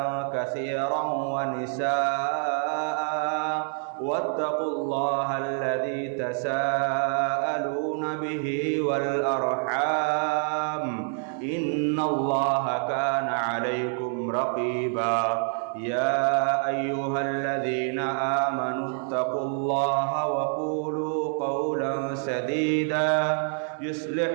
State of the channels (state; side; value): silent; left; 56 dB below the other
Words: كثيرا ونساء واتقوا الله الذي تساءلون به والأرحام إن الله كان عليكم رقيبا يا أيها الذين آمنوا اتقوا الله وقولوا قولا سديدا يصلح